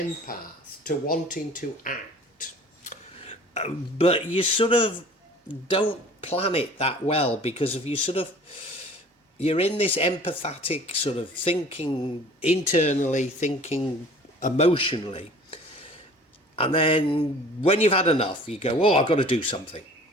to wanting to act. But you sort of don't plan it that well because of you're in this empathetic sort of thinking internally, thinking emotionally. And then when you've had enough, you go, oh, I've got to do something.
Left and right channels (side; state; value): both; normal; correlation 0.48